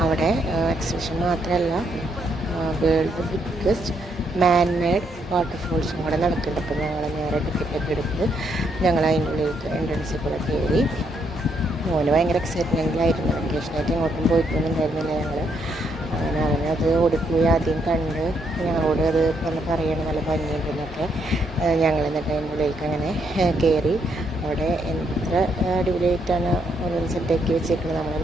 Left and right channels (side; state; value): both; normal; correlation 0.75